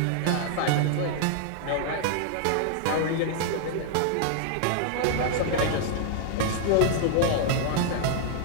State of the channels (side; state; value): both; different; correlation 0.00